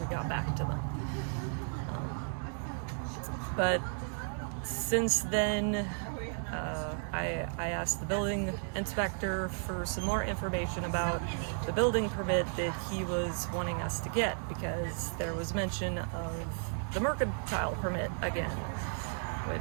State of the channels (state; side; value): silent; left; 55 dB below the other